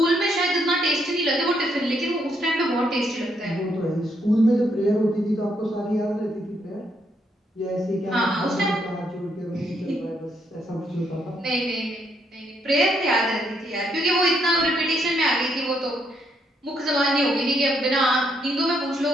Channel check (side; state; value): both; normal; correlation 0.75